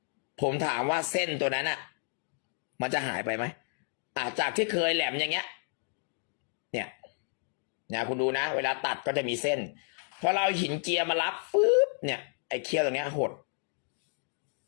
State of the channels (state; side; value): silent; right; 57 dB below the other